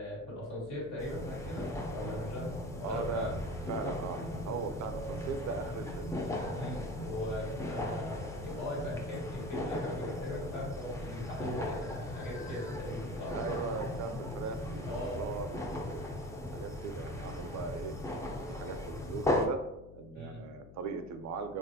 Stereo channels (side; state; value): left; noise; hum, 16 dB below the sound